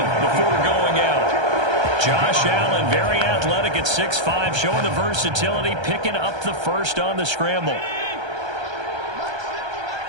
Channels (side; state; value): left; late; 1.3 ms